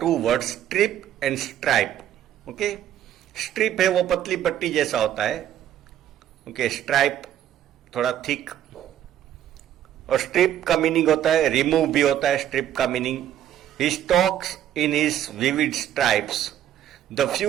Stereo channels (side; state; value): left; quieter; 11.2 dB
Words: words, strip and stripe. Strip है वो पतली पट्टी जैसा होता है. Stripe थोड़ा thick. और strip का मीनिंग होता है रिमूव भी होता है. स्ट्रिप का meaning he stalks in his vivid stripes the